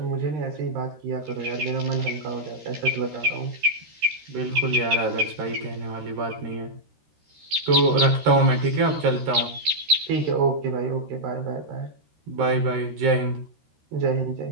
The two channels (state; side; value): late; left; 13 ms